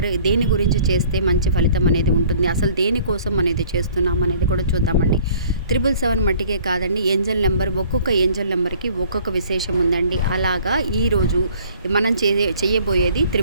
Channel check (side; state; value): both; inverted; correlation -0.54